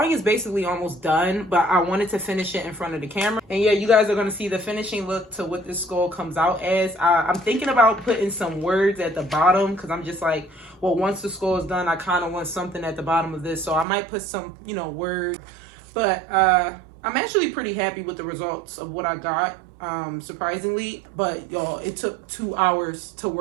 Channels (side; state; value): left; drops out; at 13.9 s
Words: is basically almost done, but I wanted to finish it in front of the camera. And yeah, you guys are going to see the finishing look to what this skull comes out as. I'm thinking about putting some words at the bottom because I'm just like, well, once the skull is done, I kind of want something at the bottom of this. So I might put some, words. But I'm actually pretty happy with the results of what I got, surprisingly. But y'all, it took 2 hours to